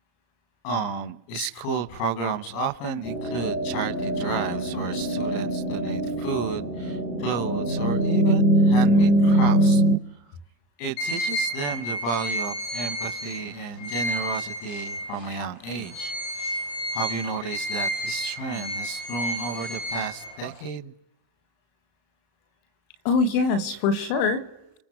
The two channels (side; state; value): right; late; 35 ms